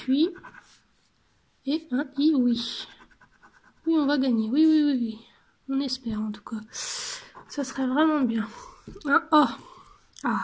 Et un I, oui. Oui, on va gagner. Oui, oui, oui, oui. On espère en tout cas. Ça serait vraiment bien. Un O. Ah,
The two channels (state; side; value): identical; both; correlation 1.00